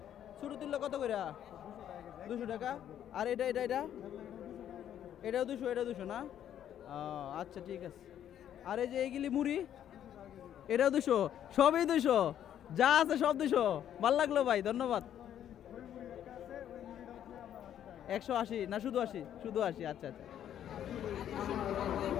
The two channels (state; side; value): quieter; right; 10.4 dB